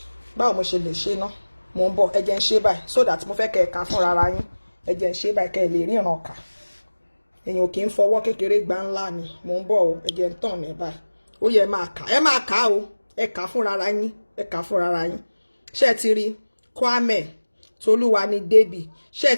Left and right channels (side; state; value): both; inverted; correlation -1.00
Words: báwo mo ṣe lè ṣe ná mo ń bọ̀ ẹ̀jẹ̀ ń ṣe báyìí so that mo fẹ́ kẹ́ ẹ kà fúnra ara yín ẹ̀jẹ̀ ń ṣe báyìí kẹ́ ẹ lè ríran kà èèyàn kì í fọwọ́ kékeré gbá ńlá ni mo ń bọ̀ o ẹ̀jẹ̀ ń tàn ẹ̀ báyìí ó yẹ ẹ máa kà o ẹ kà fúnra ara yín ẹ kà fúnra ara yín ṣé ti rí Kwame Tolúwani Débì ṣé